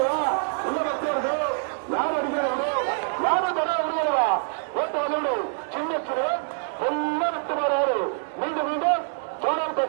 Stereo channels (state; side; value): silent; left; digital silence